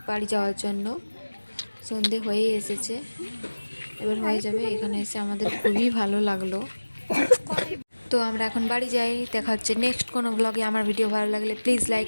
বাড়ি যাওয়ার জন্য। সন্ধে হয়ে এসেছে, এবার হয়ে যাবে। এখানে এসে আমাদের খুবই ভালো লাগলো। তো আমরা এখন বাড়ি যাই, দেখা হচ্ছে নেক্সট কোনো ব্লগে। আমার ভিডিও ভালো লাগলে please like,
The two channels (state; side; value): inverted; both; correlation -1.00